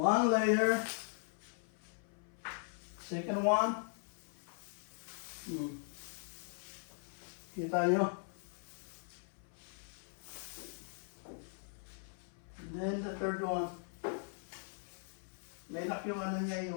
layer. Second one. Kita nyo? And then the third one. May lock yung ano niya,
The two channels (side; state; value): right; silent; 51 dB below the other